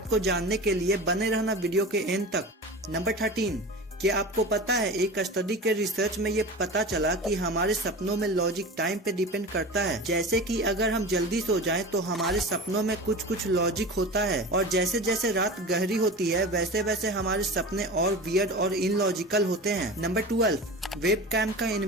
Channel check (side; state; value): both; normal; correlation 0.32